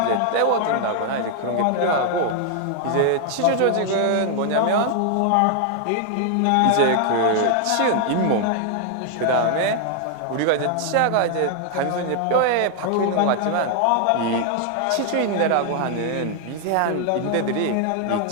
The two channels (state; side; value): different; both; correlation 0.00